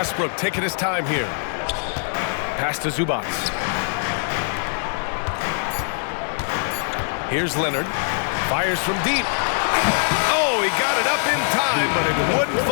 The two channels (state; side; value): silent; right; digital silence